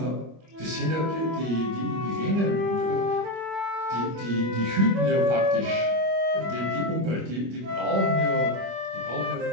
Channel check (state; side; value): late; left; 25 ms